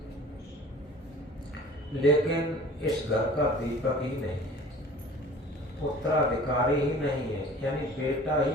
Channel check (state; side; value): normal; both; correlation 0.45